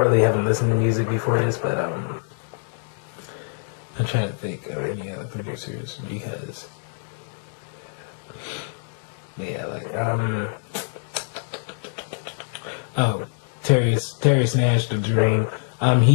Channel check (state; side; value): silent; right; digital silence